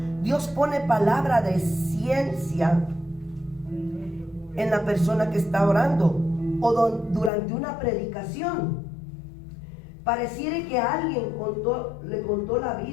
Dios pone palabra de ciencia en la persona que está orando o durante una predicación. Pareciera que alguien le contó la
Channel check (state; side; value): drops out; right; at 7.3 s